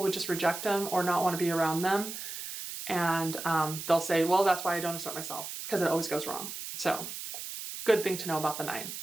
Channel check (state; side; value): noise; right; hiss, 8 dB below the sound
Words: would just reject them or not want to be around them. And they'll say, well, that's why I don't assert myself, because it always goes wrong. So good thing to know about the 9.